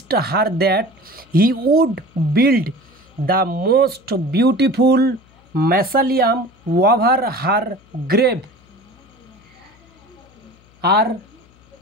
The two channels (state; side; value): noise; left; hum, 29 dB below the sound